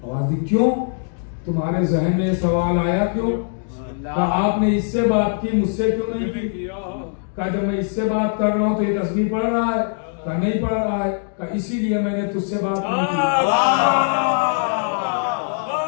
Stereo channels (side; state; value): right; silent; digital silence